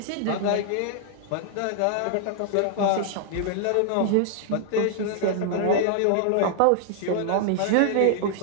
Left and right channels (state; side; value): different; both; correlation -0.01